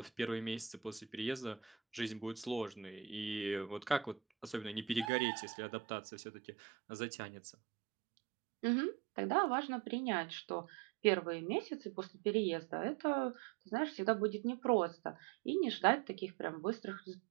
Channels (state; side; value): drops out; left; at 5.1 s